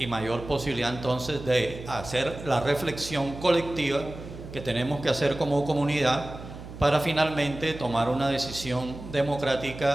mayor posibilidad entonces de hacer la reflexión colectiva que tenemos que hacer como comunidad para finalmente tomar una decisión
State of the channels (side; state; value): right; noise; hum, 13 dB below the sound